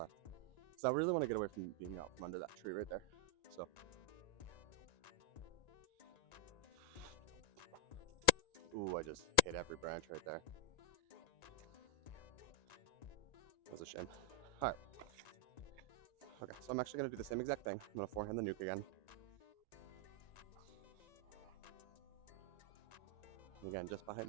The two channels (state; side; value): late; right; 1.9 ms